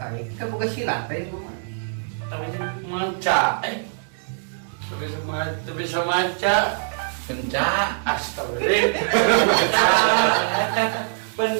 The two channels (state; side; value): silent; left; digital silence